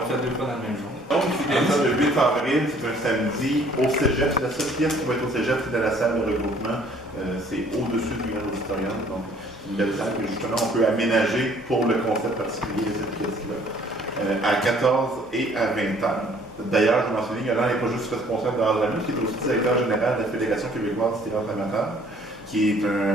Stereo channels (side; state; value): both; normal; correlation 0.58